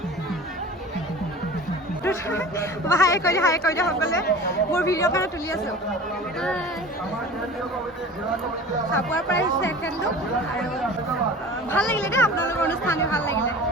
হাই কৰি দিয়া সকলে মোৰ ভিডিঅ' কাৰণে তুলি আছোঁ চাবুৱাৰ পৰা আহিছে এখেতলোক আৰু ভাল লাগিলে দেই আপোনালোকৰ অনুষ্ঠান ভাল লাগিলে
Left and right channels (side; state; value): both; normal; correlation 0.39